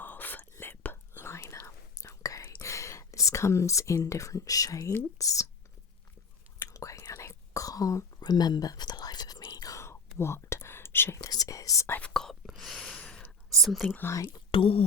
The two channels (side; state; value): right; quieter; 3.6 dB